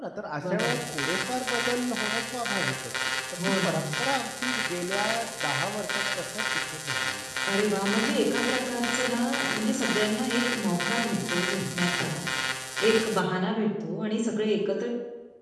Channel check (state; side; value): identical; both; correlation 1.00